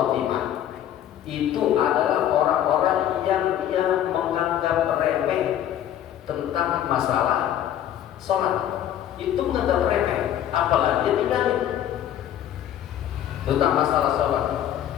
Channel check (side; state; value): right; quieter; 11.1 dB